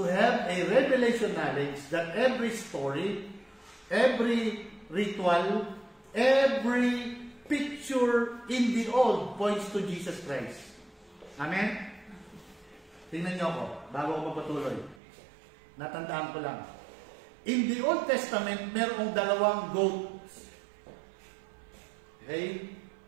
have a revelation knowledge that every story, every ritual, every picture in the old points to Jesus Christ. Amen? Tingnan niyo ako, bago ako magpatuloy. Natandaan ko lang. In the Old Testament, merong dalawang goats. Okay?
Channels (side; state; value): left; drops out; at 15.0 s